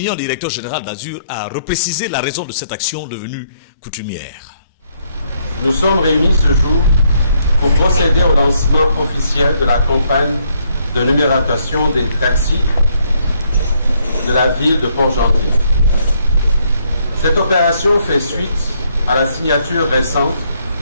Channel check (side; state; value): both; inverted; correlation -0.71